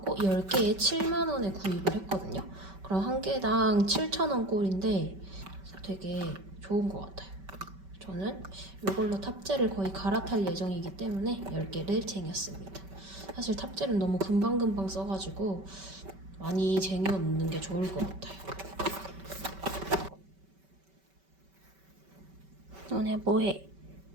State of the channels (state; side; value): late; left; 5.2 ms